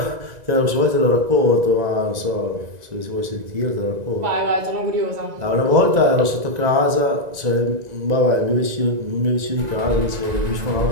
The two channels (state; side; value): late; left; 2.0 ms